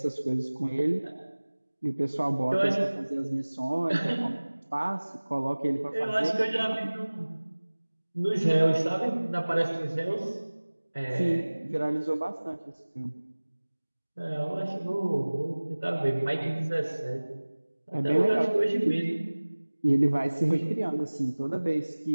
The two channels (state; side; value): inverted; both; correlation -1.00